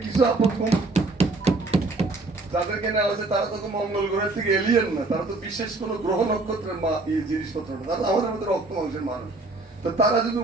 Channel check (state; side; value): quieter; left; 3.2 dB